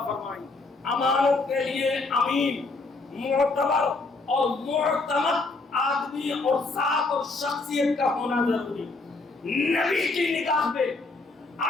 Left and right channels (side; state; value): right; quieter; 3.6 dB